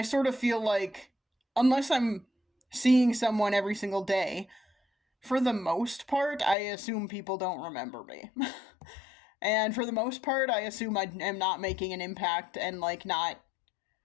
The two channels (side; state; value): right; drops out; at 6.6 s